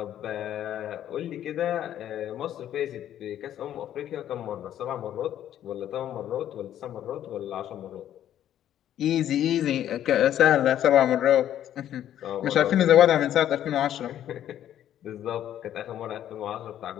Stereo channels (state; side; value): quieter; right; 11.2 dB